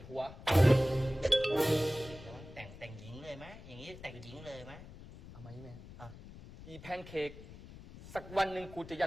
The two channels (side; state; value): left; noise; rumble, 16 dB below the sound